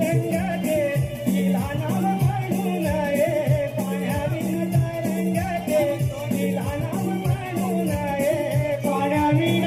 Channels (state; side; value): identical; both; correlation 1.00